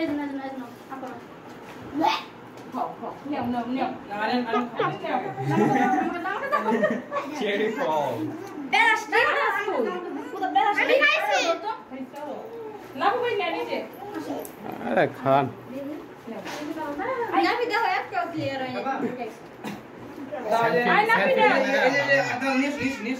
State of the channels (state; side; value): identical; both; correlation 1.00